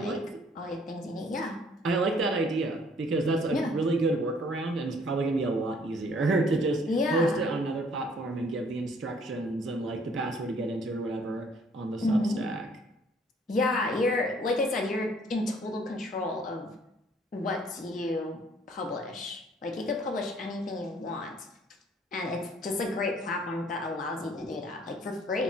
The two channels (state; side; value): normal; both; correlation 0.60